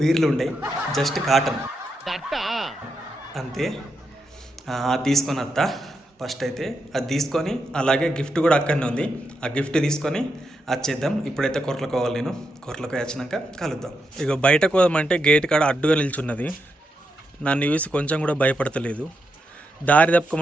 బీర్లు ఉండయి, జస్ట్ కాటన్ అంతే. అది తీసుకొని వస్తా. ఫస్ట్ అయితే అది తీసుకొని, అలాగే గిఫ్ట్ కూడా అక్కడనే ఉంది. ఆ గిఫ్ట్ తీసుకొని వచ్చేద్దాం. ఇప్పుడైతే కొరలకు పోవాలి. నేను కొరలకు వచ్చినాక కలుద్దాం. ఇక బయటకు పోదామంటే గేట్ కాడ అడ్డుగా నిల్చున్నది. నన్ను చూసి కొంచెం కూడా భయపడతలేదు. దారి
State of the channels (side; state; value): both; normal; correlation 0.84